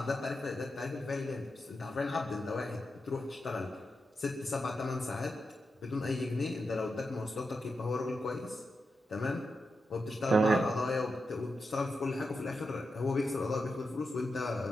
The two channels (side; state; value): both; normal; correlation 0.87